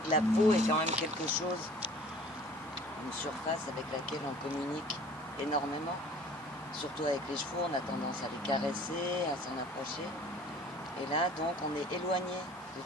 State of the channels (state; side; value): normal; both; correlation 0.49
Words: la peau est quand même quelque chose, une surface avec laquelle on communique énormément. Surtout avec les chevaux, on a tendance à les caresser, à s'en approcher. Et là, donc, on est éloigné de